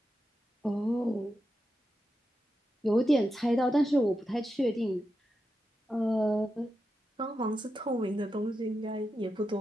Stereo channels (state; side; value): normal; both; correlation 0.88